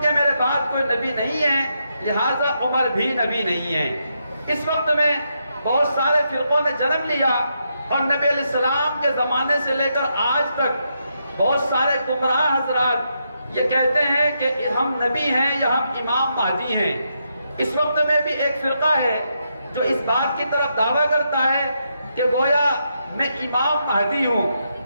میرے بعد کوئی نبی نہیں ہے لہذا عمر بھی نبی نہیں ہے۔ اس وقت میں بہت سارے فرقوں نے جنم لیا اور نبی علیہ السلام کے زمانے سے لے کر آج تک بہت سارے گمراہ حضرات یہ کہتے ہیں کہ ہم نبی ہیں یا ہم امام مہدی ہیں۔ اس وقت میں بھی ایک فرقہ ہے جو اس بات کی طرف دعویٰ کرتا ہے کہ گویا میں امام مہدی ہوں،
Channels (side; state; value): both; inverted; correlation -0.81